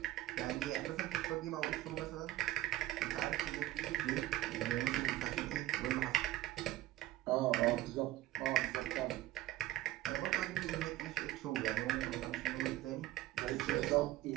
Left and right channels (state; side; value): quieter; left; 15.2 dB